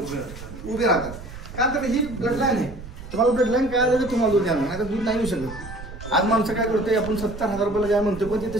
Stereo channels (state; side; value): noise; right; rumble, 13 dB below the sound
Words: उभे राहतात. का तर ही ब्लडलाईन आहे. तुम्हाला ब्लडलाईन काय आलं तर तुम्हाला दूध द्यावं, नाही तर दूध नाही येऊ शकत. आज माणसं काय करतोय, आपण 70,000 रुपयाला गाय म्हणतो, पण ती